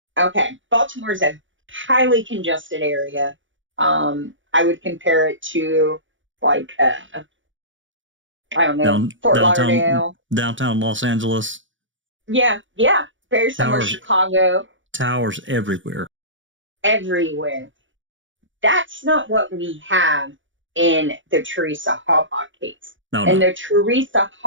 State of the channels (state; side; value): late; left; 0.56 ms